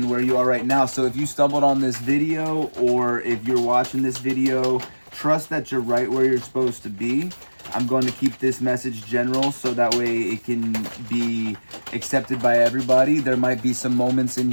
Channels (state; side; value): inverted; both; correlation -1.00